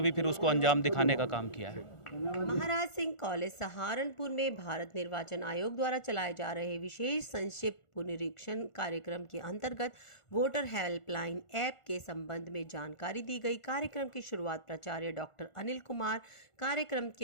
भी फिर उसको अंजाम दिखाने का काम किया है। महाराज सिंह कॉलेज सहारनपुर में भारत निर्वाचन आयोग द्वारा चलाए जा रहे विशेष संक्षिप्त पुनरीक्षण कार्यक्रम के अंतर्गत वोटर हेल्पलाइन ऐप के संबंध में जानकारी दी गई। कार्यक्रम की शुरुआत प्राचार्य डॉक्टर अनिल कुमार, कार्यक्रम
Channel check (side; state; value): right; late; 1.4 ms